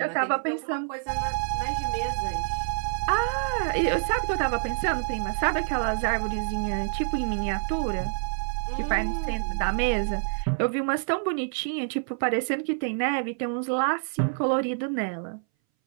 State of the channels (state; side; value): silent; left; 60 dB below the other